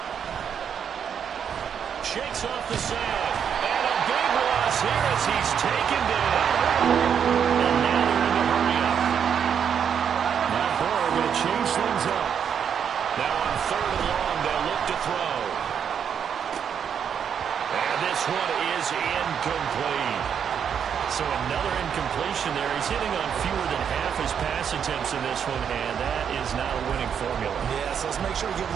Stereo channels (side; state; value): left; quieter; 7.9 dB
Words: Shakes off the sand, and a big loss here as he's taken down. And now they're in the hurry-up. Now Burrow going to change things up. Now on 3rd and long, they'll look to throw. And this one is incomplete. So another incompletion there. He's hitting on fewer than half his pass attempts in this one, and that is not a winning formula. Yeah, so let's make sure we give